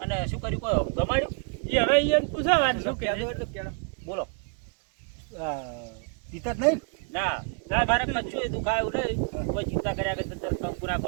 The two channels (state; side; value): quieter; left; 38.6 dB